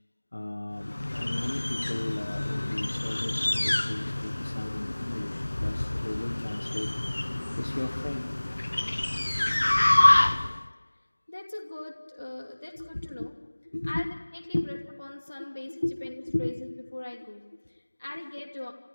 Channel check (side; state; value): both; inverted; correlation -1.00